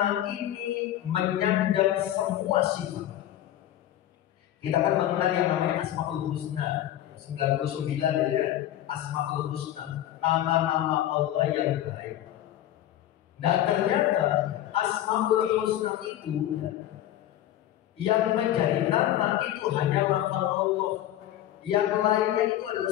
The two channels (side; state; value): right; quieter; 12.6 dB